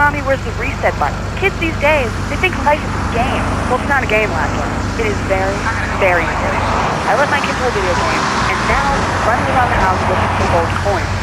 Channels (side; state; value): both; identical; correlation 1.00